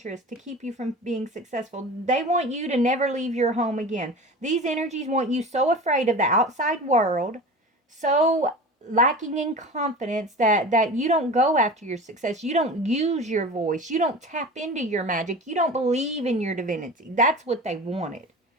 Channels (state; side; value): normal; both; correlation 0.34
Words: to keep you from being successful. They want you to never leave your home again. These energies want you so afraid of the outside world, so lacking in confidence that you don't go after your success. You don't use your voice. You don't tap into your magic. You don't believe in your divinity. That's what they wanted.